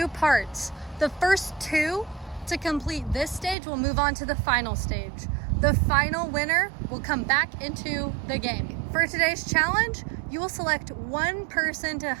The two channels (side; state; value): left; drops out; at 3.6 s